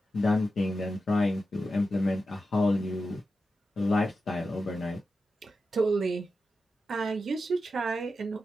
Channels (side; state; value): both; normal; correlation 0.90